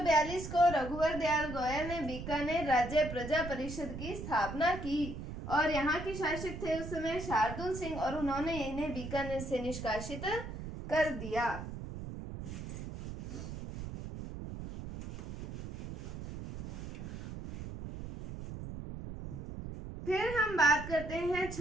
को रघुवर दयाल गोयल ने बीकानेर राज्य प्रजा परिषद की स्थापना की और यहाँ के शासक थे उस समय शार्दुल सिंह और उन्होंने इन्हें बीकानेर से निष्कासित कर दिया। फिर हम बात करते हैं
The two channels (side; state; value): right; noise; rumble, 8 dB below the sound